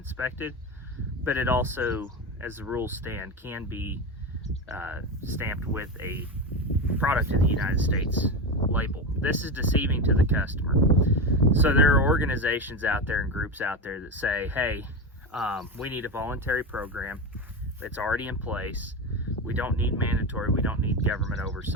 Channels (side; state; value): both; normal; correlation 0.18